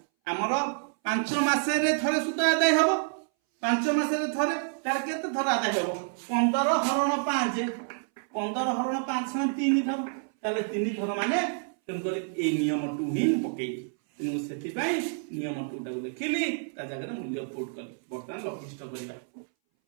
हमर 5 मासरे थरे सुध आदाय हबो 5 मासरे थरे तार केते थर आदाय हबो 15 हरण 5 15 हरण 5 समान 3 थर ताले 3 थर माने तन करे ए नियम 2 ही पकेई तेनु सेति पई नियम 2 टा लिखिली ता जगह मूल्य पुट कली बर्तमान लघिष्ठ करिबा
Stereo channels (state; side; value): silent; left; 59 dB below the other